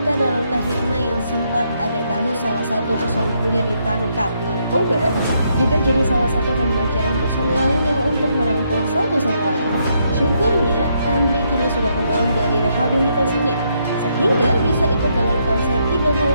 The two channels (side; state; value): both; inverted; correlation -0.75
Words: dalam Kahitna yang sempat ada kasus salah satu personilnya ditangkap narkoba juga jadi salah satu pembelajaran personil lainnya untuk merangkul satu sama lain. Syukurnya Andri kini sudah kembali dari rehabilitasinya sehingga bisa ikut dalam konser 36